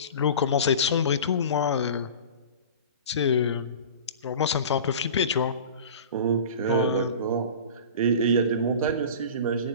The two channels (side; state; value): both; inverted; correlation -0.36